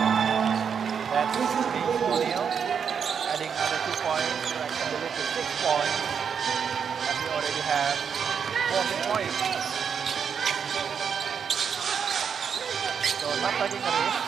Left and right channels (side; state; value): left; quieter; 7.0 dB